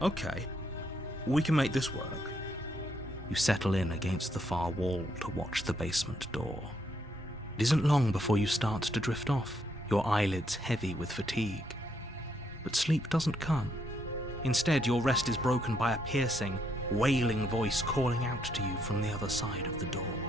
we can make this work. You settle in against the far wall to watch the basement door. It isn't long before you start to drift off, your eyelids heavy with fatigue. But sleep doesn't come. Instead, your rest is broken by a piercing, wailing voice calling out to you from the other side of the door.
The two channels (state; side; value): normal; both; correlation 0.75